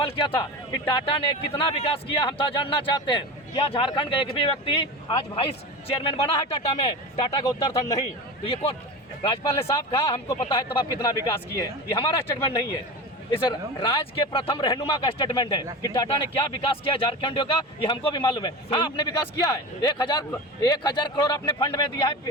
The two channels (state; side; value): normal; both; correlation 0.28